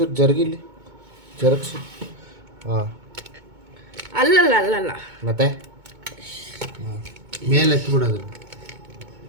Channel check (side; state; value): left; late; 2.2 ms